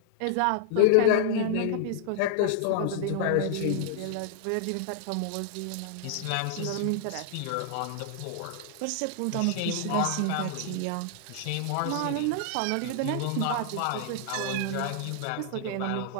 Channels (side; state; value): both; different; correlation -0.01